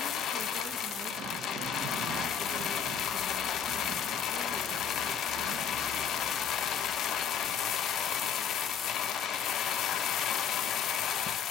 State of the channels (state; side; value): quieter; right; 7.7 dB